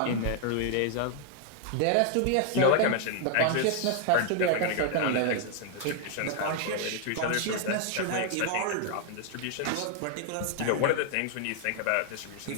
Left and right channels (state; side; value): different; both; correlation 0.00